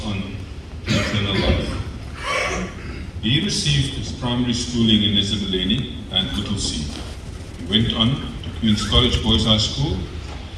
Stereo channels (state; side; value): identical; both; correlation 1.00